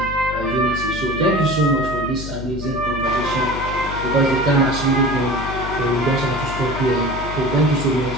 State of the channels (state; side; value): noise; left; hum, 9 dB below the sound